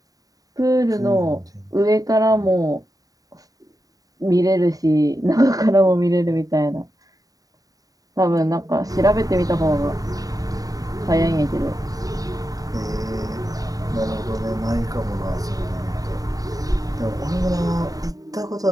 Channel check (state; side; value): late; left; 0.18 ms